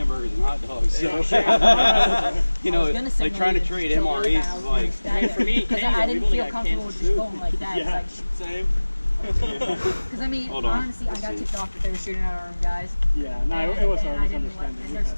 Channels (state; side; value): inverted; both; correlation -1.00